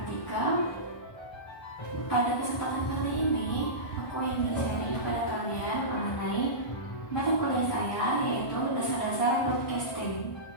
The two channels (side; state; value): right; late; 1.2 ms